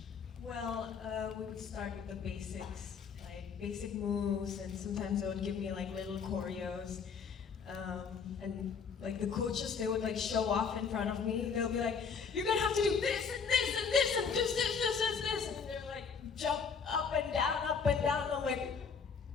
Well, we would start with the basics, like basic moves, and sometimes they would give me like little choreos. And like the coaches, they would like show off in front of me. They'll be like, "You're gonna have to do this and this and this and this, and they're like, jump up and down, up and down. I'm like,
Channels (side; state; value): right; quieter; 6.0 dB